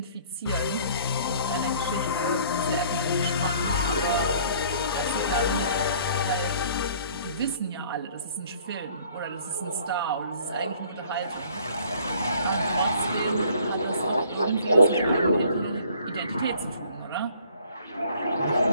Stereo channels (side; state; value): both; inverted; correlation -0.56